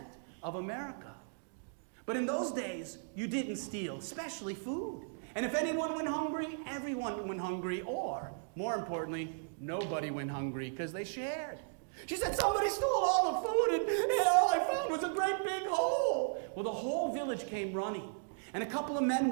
of America. But in those days, you didn't steal, especially food. And if anyone went hungry, everyone went hungry, or, more importantly, nobody went hungry because they shared. She said, "Somebody stole all the food and all I found was a great big hole." Well, the whole village came running. And a couple of men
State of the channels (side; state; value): left; silent; digital silence